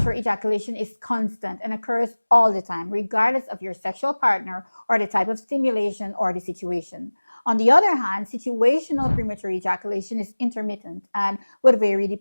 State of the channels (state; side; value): inverted; both; correlation -1.00